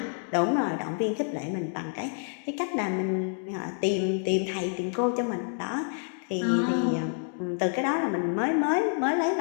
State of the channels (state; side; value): silent; right; 59 dB below the other